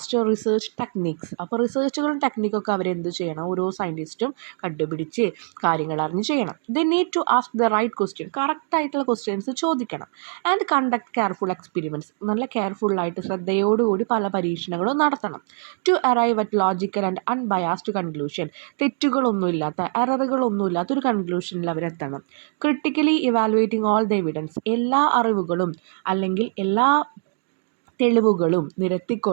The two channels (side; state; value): left; silent; 63 dB below the other